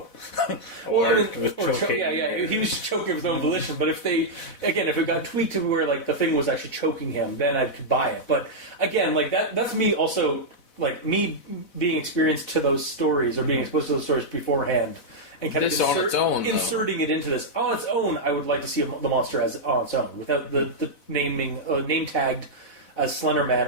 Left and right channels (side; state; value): right; late; 4.1 ms